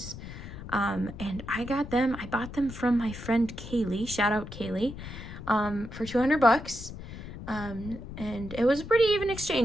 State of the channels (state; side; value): noise; left; rumble, 11 dB below the sound